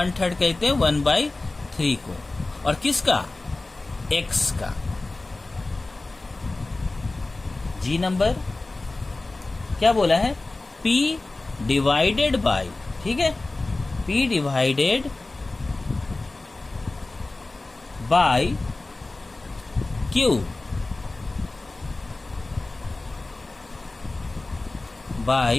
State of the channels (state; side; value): quieter; right; 3.1 dB